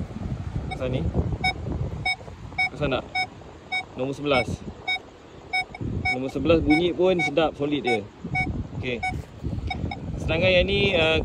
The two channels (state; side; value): identical; both; correlation 1.00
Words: kawasan ni. Kawasan nak nombor 11. Nombor 11 bunyi pun sedap, solid dia. Okey. Sedangkan yang ni